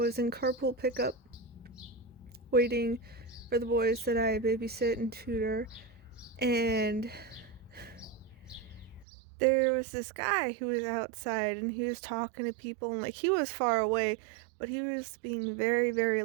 in carpool pickup waiting for the boys that I babysit and tutor, and there was this guy who was outside, and he was talking to people, and like he was far away, but he was being very, very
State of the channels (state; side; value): drops out; left; at 9.1 s